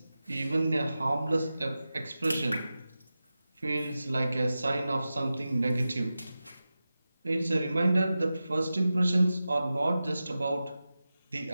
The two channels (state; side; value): inverted; both; correlation -0.94